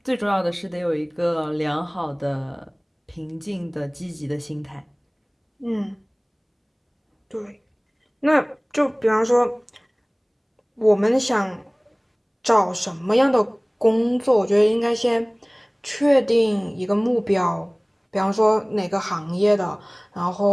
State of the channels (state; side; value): identical; both; correlation 1.00